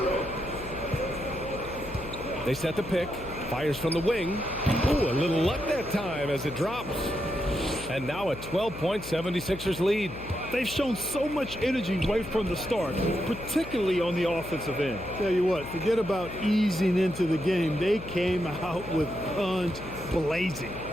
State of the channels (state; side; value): noise; left; hum, 13 dB below the sound